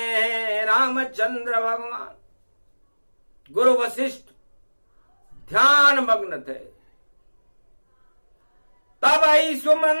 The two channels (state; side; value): inverted; both; correlation -1.00